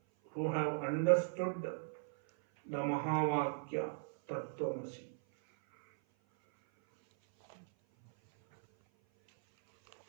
who have understood the Mahavakya Tattvamasi.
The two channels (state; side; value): silent; left; 53 dB below the other